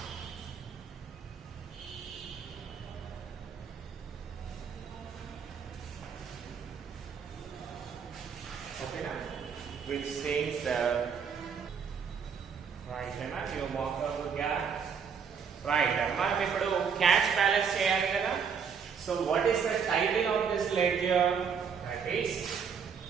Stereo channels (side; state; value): left; quieter; 6.6 dB